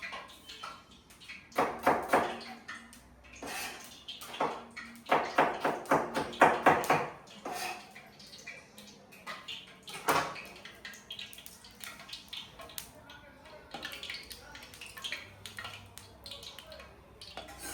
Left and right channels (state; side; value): identical; both; correlation 1.00